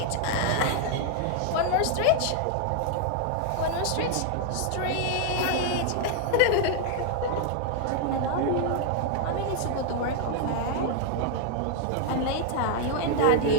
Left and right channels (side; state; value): both; different; correlation 0.00